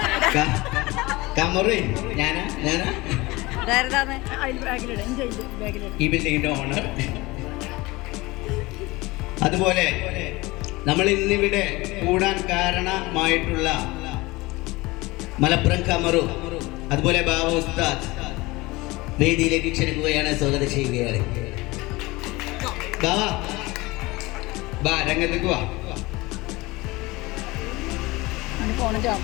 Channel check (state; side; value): quieter; right; 21.8 dB